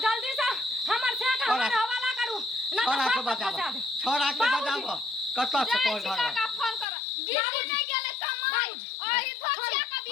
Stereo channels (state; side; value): drops out; right; at 6.9 s